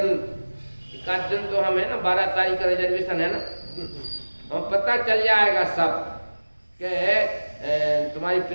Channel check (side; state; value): both; inverted; correlation -1.00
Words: एक दिन तो हम है ना 12 तारीख का रिजर्वेशन है ना, हम पता चल जाएगा सब कि तुम्हारी